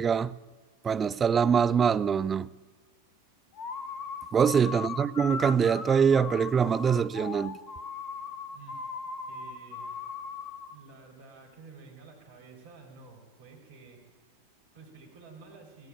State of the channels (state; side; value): quieter; left; 5.9 dB